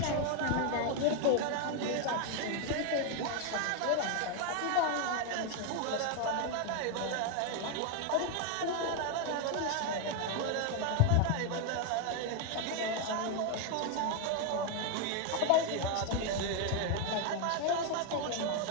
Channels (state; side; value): different; both; correlation 0.01